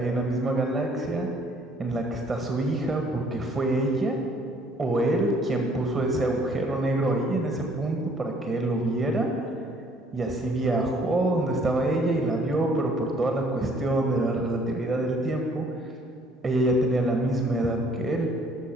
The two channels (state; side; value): normal; both; correlation 0.61